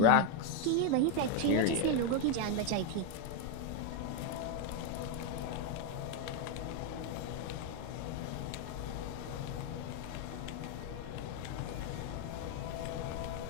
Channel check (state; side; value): different; both; correlation 0.02